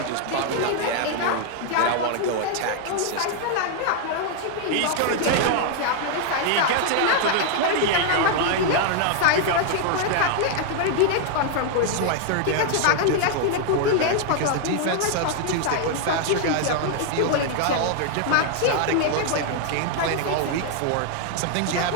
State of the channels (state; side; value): different; both; correlation 0.00